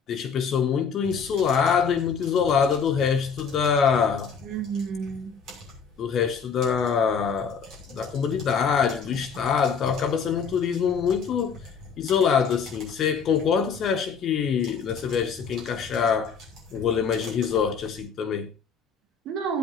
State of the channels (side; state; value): right; quieter; 6.2 dB